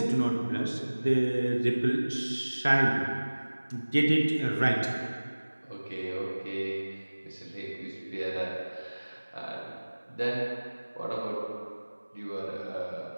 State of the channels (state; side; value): inverted; both; correlation -1.00